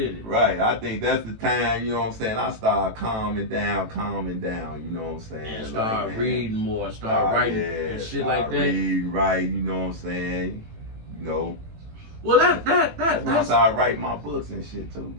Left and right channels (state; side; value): late; left; 18 ms